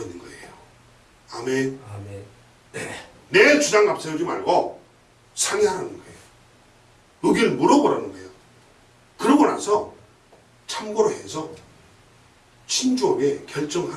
있는 거예요. 아멘. 아멘. 내 주장 앞세우지 말고 상의하라는 거예요. 의견을 물어보라는 거예요. 그러고 나서 참고로 해서 신중하게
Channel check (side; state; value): both; identical; correlation 1.00